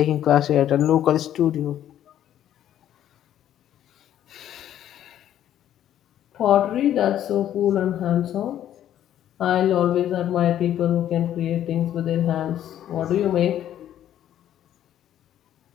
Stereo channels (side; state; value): right; quieter; 11.3 dB